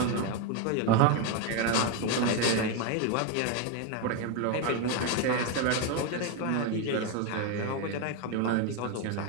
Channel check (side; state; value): both; different; correlation 0.02